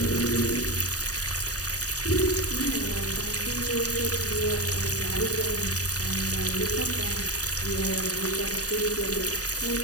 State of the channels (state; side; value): late; right; 0.67 ms